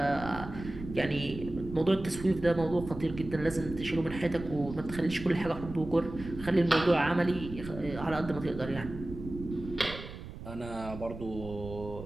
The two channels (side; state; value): right; noise; rumble, 11 dB below the sound